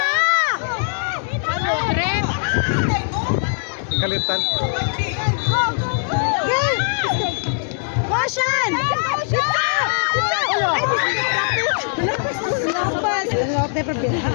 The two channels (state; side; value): silent; right; digital silence